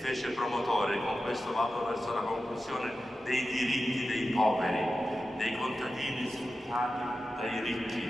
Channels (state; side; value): normal; both; correlation 0.92